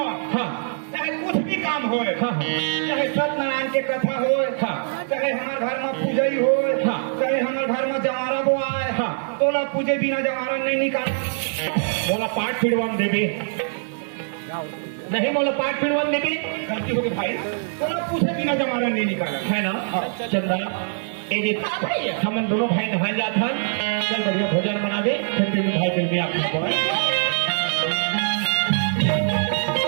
हाँ चाहे कुछ भी काम हो हाँ चाहे सत्यनारायण के कथा हो हाँ चाहे हमारे घर में पूजई हो हाँ चाहे हमारे घर में जमारा वो आए हाँ तोला पूजे बिना जमारा नहीं निकाल बोला पाठ पिड़वान देवी नहीं बोला पाठ पिड़वान देवी गलती हो गई भाई तोला पूछे बिना जमारा नहीं निकाला है ना चंदा हम दोनों भाई नहा जाता चल बढ़िया भोजन बना दे फिर भाई फिर भी आपको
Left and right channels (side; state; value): left; silent; 63 dB below the other